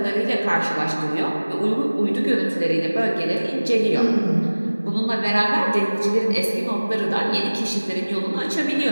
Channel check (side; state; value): both; inverted; correlation -1.00